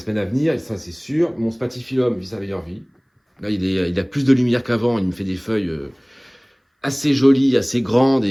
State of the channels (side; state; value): both; identical; correlation 1.00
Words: à venir. Et ça, c'est sûr. Mon spatifilum vit sa meilleure vie. Là, il a plus de lumière qu'avant. Il me fait des feuilles assez jolies, assez grandes